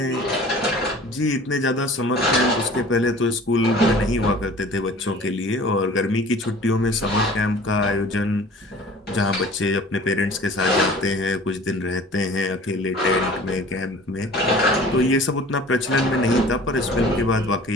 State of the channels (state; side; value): normal; both; correlation 0.45